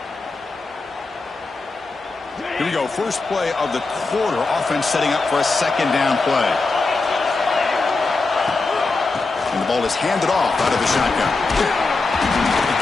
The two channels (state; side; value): quieter; right; 3.7 dB